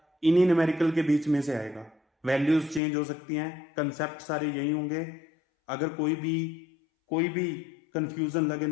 इन्हीं न्यूमेरिकल के बीच में से आएगा। वैल्यूज चेंज हो सकती हैं, कंसेप्ट सारे यही होंगे। अगर कोई भी कंफ्यूजन लगे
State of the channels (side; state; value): right; drops out; at 2.8 s